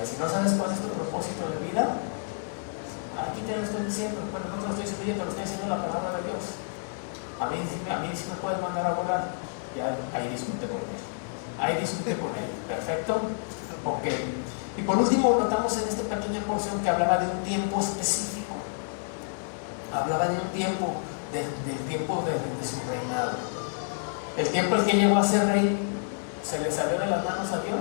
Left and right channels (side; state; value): right; silent; digital silence